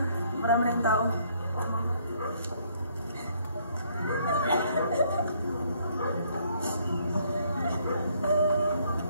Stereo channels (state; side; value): inverted; both; correlation -0.66